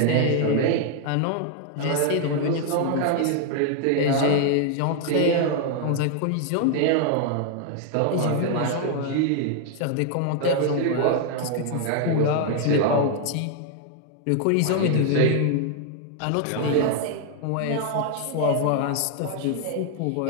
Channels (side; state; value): both; different; correlation 0.00